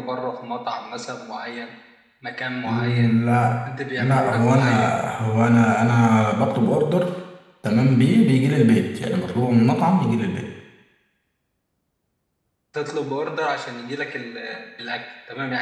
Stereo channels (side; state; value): both; identical; correlation 1.00